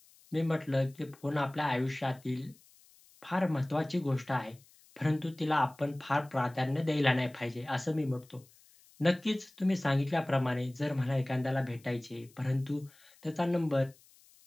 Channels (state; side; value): noise; left; hiss, 28 dB below the sound